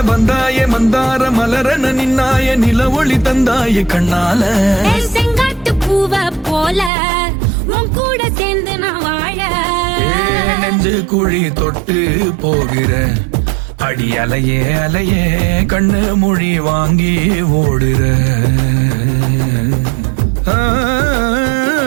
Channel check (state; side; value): drops out; left; at 6.9 s